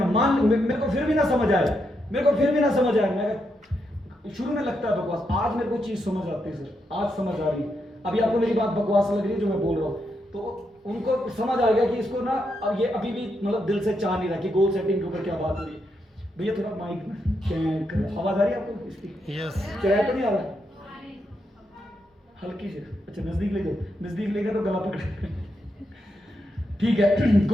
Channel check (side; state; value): both; normal; correlation 0.82